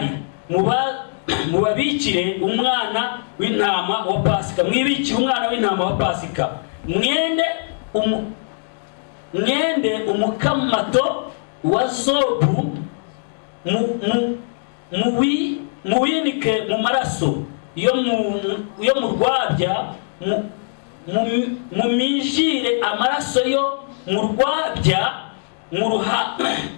mubabikire umwana w'intama wa Pasika. Mwibikire umwana w'intama wa Pasika, mwende umukamato wa zobu, muwinike mu maraso yo mu rwabya, mumijire amaraso yo mu rwabya mu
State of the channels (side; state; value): right; silent; digital silence